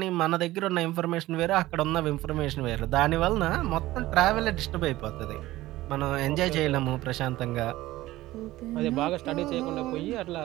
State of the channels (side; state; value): left; quieter; 16.9 dB